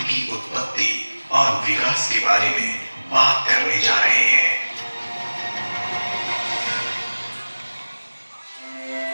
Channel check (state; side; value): inverted; both; correlation -1.00